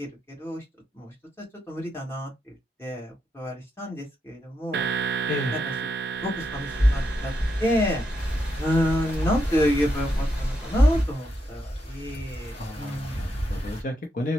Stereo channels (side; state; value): both; normal; correlation 0.82